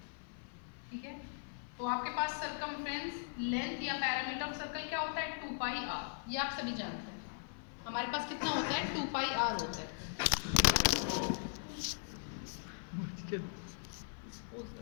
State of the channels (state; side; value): silent; right; 52 dB below the other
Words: ठीक है। तो आपके पास सर्कमफ्रेंस, लेंथ या पैरामीटर ऑफ सर्कल क्या होता है? 2 पाई आर। ये आप सभी जानते हैं। हमारे पास कितना होता है? 2 पाई आर होता है।